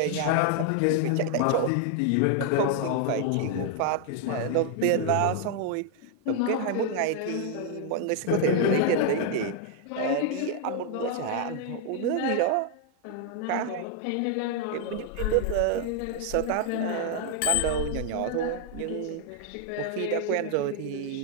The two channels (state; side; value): different; both; correlation 0.00